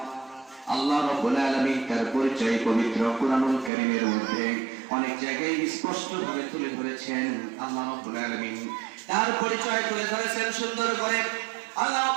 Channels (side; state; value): left; drops out; at 3.7 s